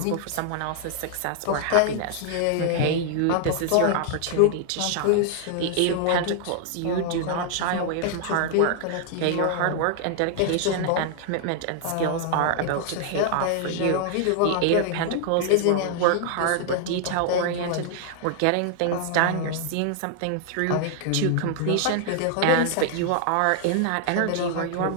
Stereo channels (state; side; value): different; both; correlation 0.00